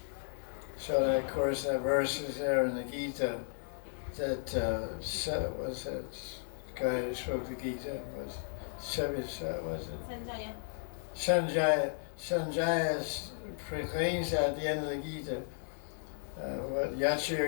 So that, of course, that verse is there in the Gita that was that guy who spoke the Gita was it? Sanjaya proclaims at the end of the Gita, what Yacha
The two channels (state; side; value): silent; right; digital silence